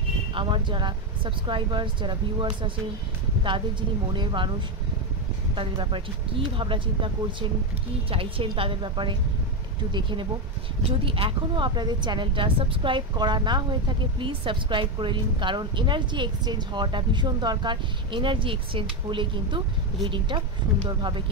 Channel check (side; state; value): both; normal; correlation 0.09